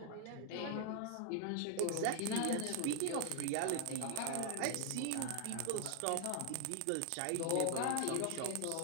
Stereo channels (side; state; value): both; different; correlation 0.00